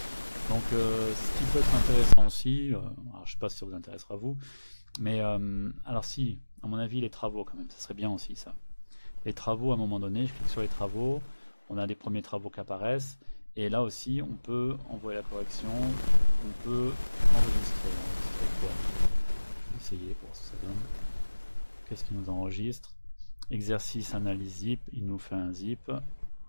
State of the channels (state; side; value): inverted; both; correlation -1.00